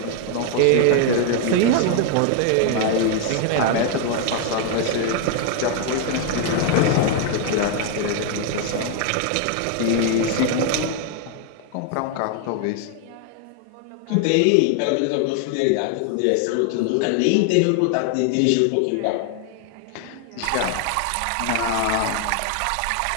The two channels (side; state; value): both; different; correlation 0.00